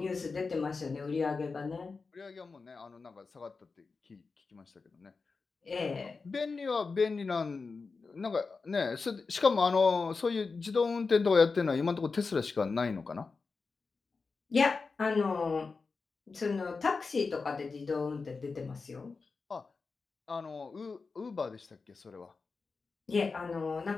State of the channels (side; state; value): right; quieter; 4.4 dB